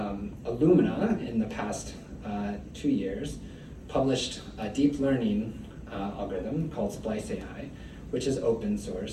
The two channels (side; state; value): both; identical; correlation 1.00